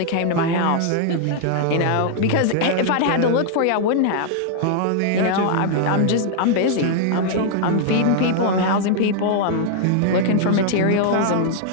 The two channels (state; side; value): different; both; correlation 0.00